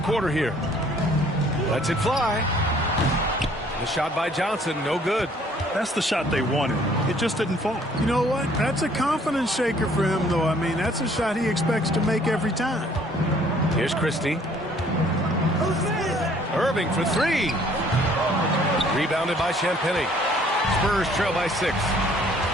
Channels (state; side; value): normal; both; correlation 0.59